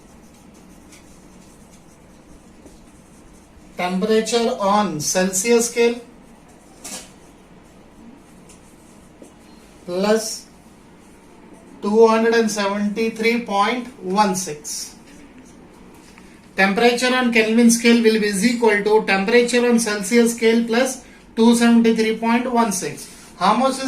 temperature on Celsius scale plus 273.16. Temperature on Kelvin scale will be equal to temperature on Celsius scale plus 273.16. How much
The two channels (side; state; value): both; identical; correlation 1.00